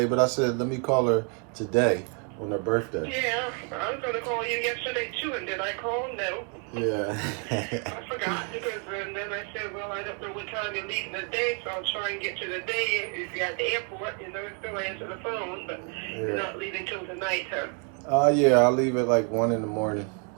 but I said let me call her today on her birthday. Yeah, I was going to call you yesterday too, and did I call? No. Yeah. I forgot because and then I said, well, I don't know what time you're leaving today, so I'll try and get you today. If you're at the airport, still answer the phone, but you're not leaving till tonight, huh? Yeah, I'll leave at like 1 in the morning.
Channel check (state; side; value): quieter; left; 39.3 dB